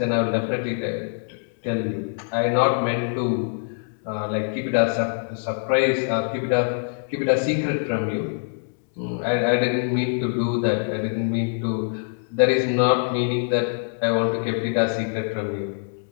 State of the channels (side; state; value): right; silent; digital silence